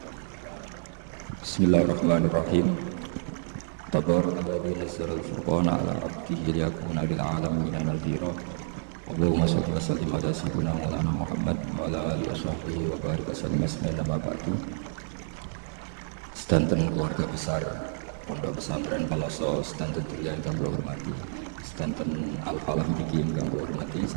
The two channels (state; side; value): silent; left; digital silence